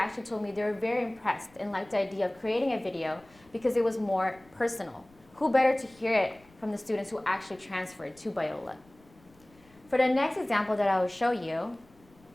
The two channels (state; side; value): noise; left; rumble, 29 dB below the sound